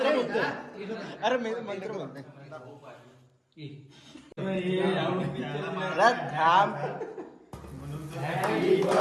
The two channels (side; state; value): both; identical; correlation 1.00